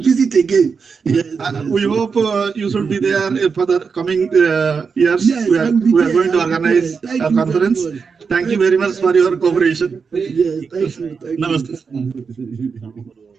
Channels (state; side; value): quieter; left; 5.5 dB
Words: visit again. Yes. We hope you should be there for the coming years. Yes, we are going to organize a conference. Thank you very much for your cooperation. Yes, thank you. Namaste.